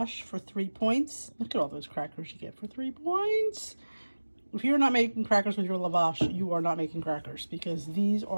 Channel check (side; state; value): both; inverted; correlation -1.00